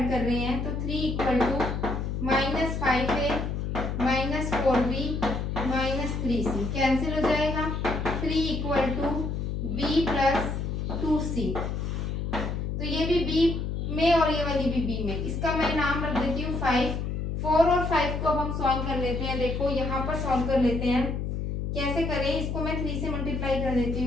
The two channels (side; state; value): left; noise; hum, 2 dB below the sound